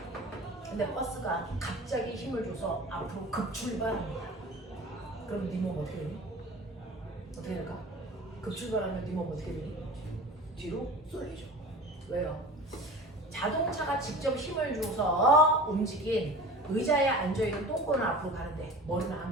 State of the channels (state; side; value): normal; both; correlation 0.37